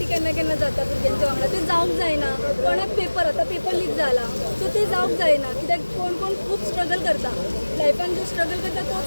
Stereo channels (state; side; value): inverted; both; correlation -1.00